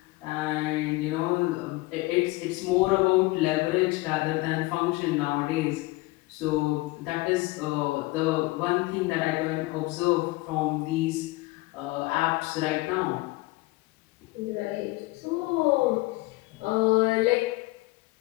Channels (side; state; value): right; quieter; 21.5 dB